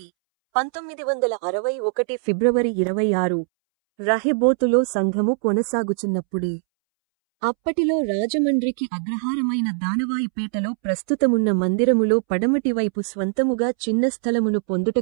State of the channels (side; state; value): left; silent; 64 dB below the other